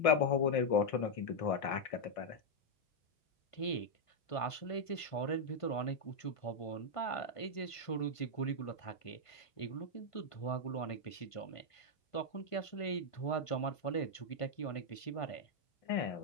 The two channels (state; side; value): late; right; 1.5 ms